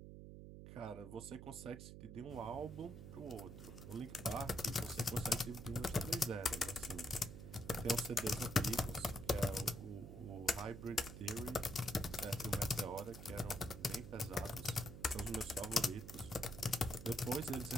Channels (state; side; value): noise; right; hum, 11 dB below the sound